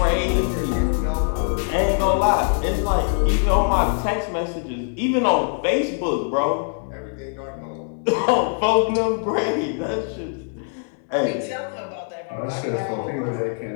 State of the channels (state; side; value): silent; right; 59 dB below the other